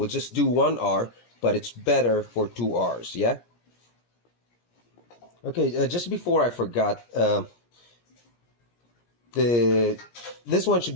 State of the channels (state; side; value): late; right; 17 ms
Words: just do 1 hour, but it's better for 2 hours. Yeah. Okay. Just before I forgot, this one should